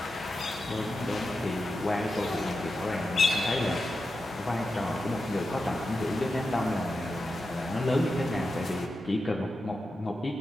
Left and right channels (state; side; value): normal; both; correlation 0.90